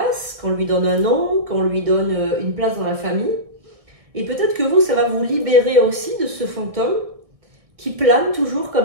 qu'on lui donne un nom, qu'on lui donne une place dans la famille. Et peut-être que vous, ça va vous libérer aussi de ce fantôme qui plane toujours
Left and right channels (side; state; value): left; late; 1.6 ms